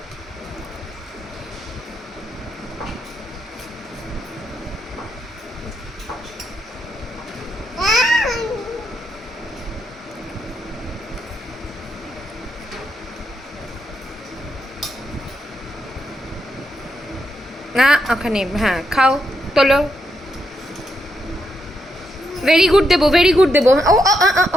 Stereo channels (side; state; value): both; normal; correlation 0.80